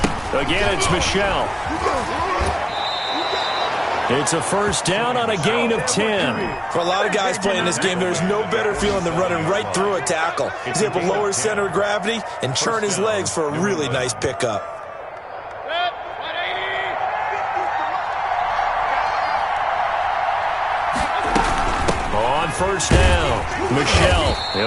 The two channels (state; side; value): identical; both; correlation 1.00